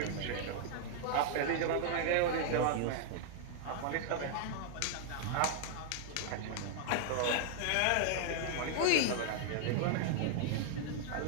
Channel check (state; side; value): different; both; correlation 0.00